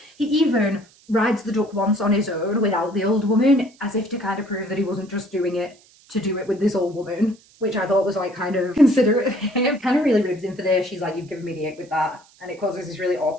He even rides the duck once on his own without the old woman, as if to kind of prove that he wasn't just doing it to do it with this old woman, which I thought was like kind of considerate of him. Kind of really ribs him for this. She's like, you've given me the ick with that. And it causes this really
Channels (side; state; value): right; noise; hiss, 28 dB below the sound